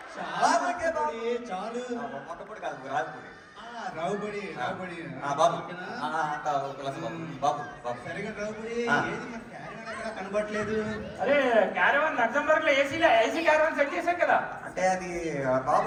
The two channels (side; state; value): both; identical; correlation 1.00